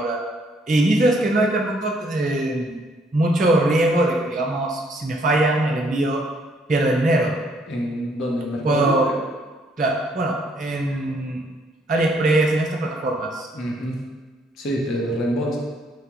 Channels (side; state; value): both; normal; correlation 0.68